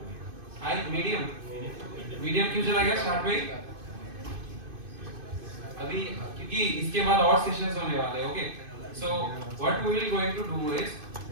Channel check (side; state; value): left; late; 2.5 ms